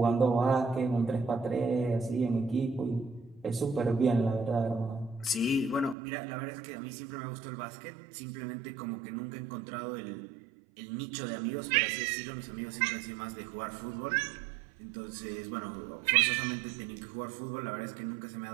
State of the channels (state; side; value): drops out; left; at 6.0 s